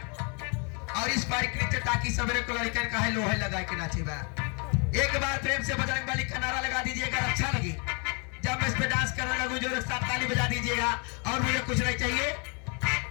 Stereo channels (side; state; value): right; quieter; 35.8 dB